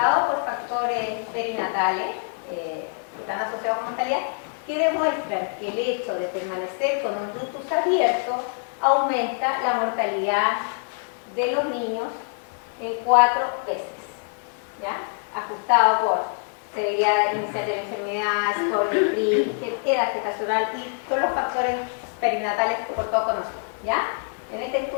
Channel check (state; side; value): silent; right; 58 dB below the other